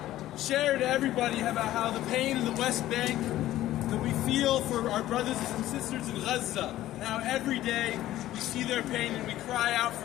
share to everybody about how the pain in the West Bank that we feel for our brothers and sisters in Gaza, and how every day we see their pain and we cry out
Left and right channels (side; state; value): right; quieter; 14.4 dB